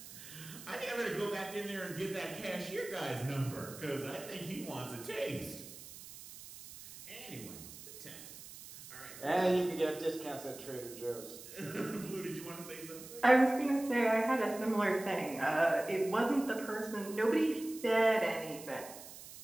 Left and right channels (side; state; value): right; noise; hiss, 15 dB below the sound